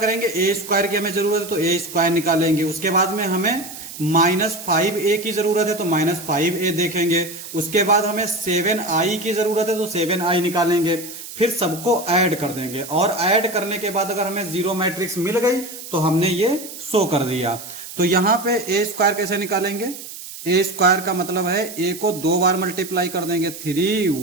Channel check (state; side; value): noise; right; hiss, 12 dB below the sound